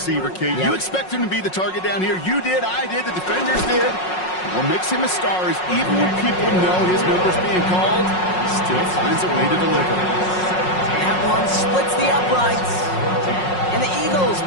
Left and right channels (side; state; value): right; late; 5.5 ms